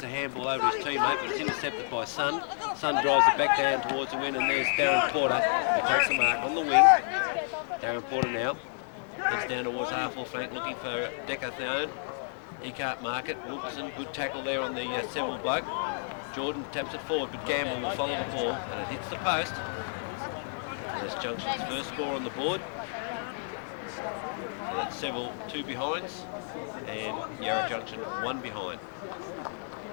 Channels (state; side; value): silent; right; digital silence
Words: a handball over his teammate, but it's intercepted by Sun. Sun drives it back down towards the win, and there's Darren Porter, who takes a mark on the wing. Darren Porter now heads down towards half-full flank, looking for Decathone. He can't mark it. Wilkinson, good tackle there on the Seville bloke. Jordan taps it forward, but Gamble will follow the ball, and it hits the post. And that's Junction's first score on the board. So that's Seville 2 behinds, and Yarra Junction 1 behind.